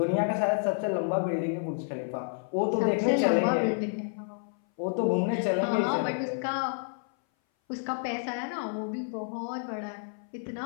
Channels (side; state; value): right; silent; 57 dB below the other